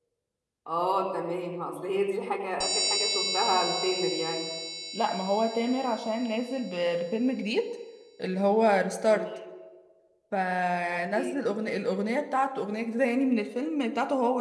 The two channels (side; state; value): both; identical; correlation 1.00